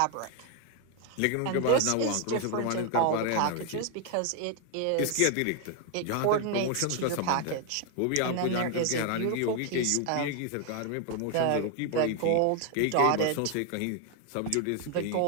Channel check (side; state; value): both; different; correlation 0.01